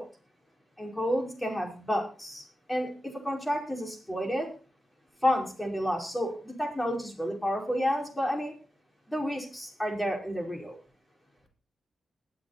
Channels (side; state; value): both; normal; correlation 0.92